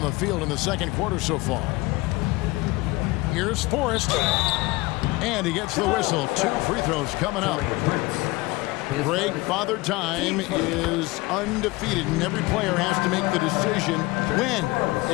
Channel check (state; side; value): quieter; right; 21.8 dB